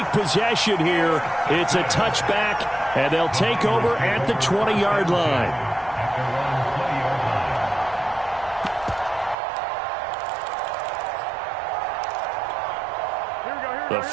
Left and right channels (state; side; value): drops out; left; at 9.3 s